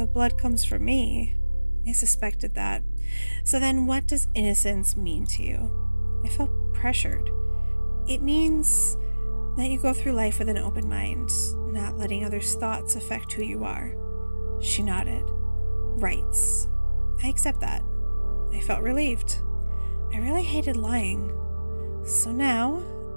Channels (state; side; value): inverted; both; correlation -1.00